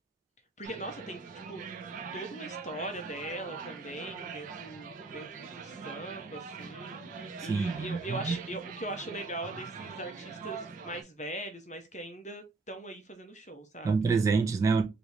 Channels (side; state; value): left; quieter; 3.8 dB